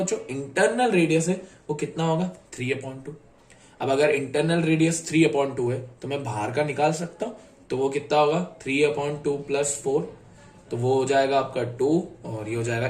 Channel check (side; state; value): both; identical; correlation 1.00